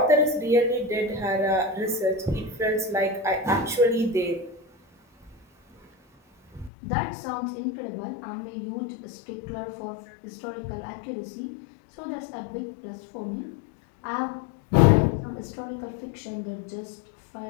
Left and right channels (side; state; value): right; drops out; at 6.7 s